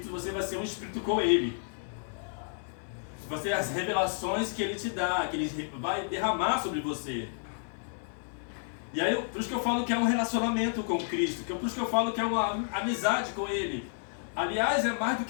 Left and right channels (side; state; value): right; silent; digital silence